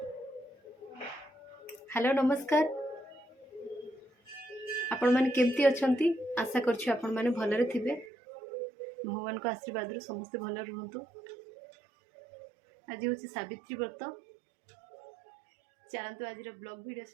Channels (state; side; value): drops out; left; at 8.1 s